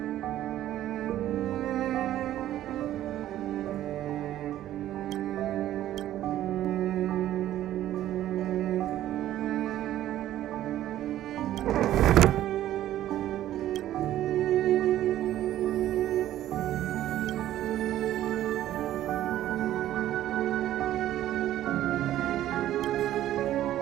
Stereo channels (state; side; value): quieter; left; 13.0 dB